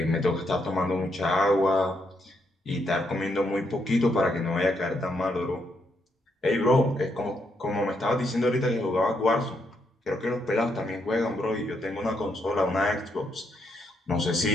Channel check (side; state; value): both; normal; correlation 0.77